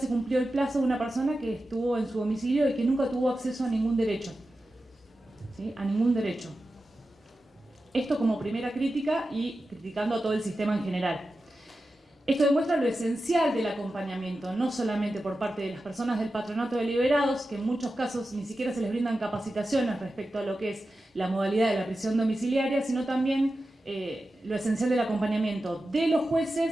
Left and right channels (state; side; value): normal; both; correlation 0.92